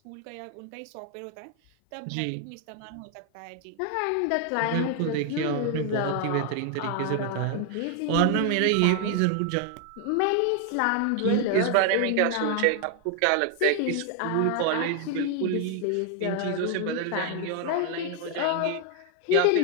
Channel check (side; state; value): both; different; correlation 0.00